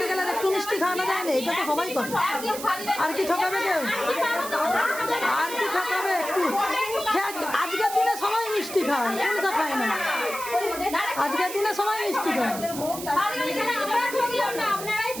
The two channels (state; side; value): noise; right; hiss, 10 dB below the sound